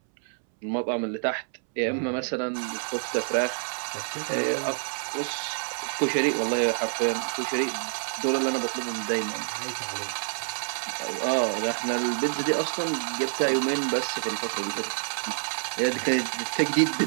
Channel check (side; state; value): left; silent; 60 dB below the other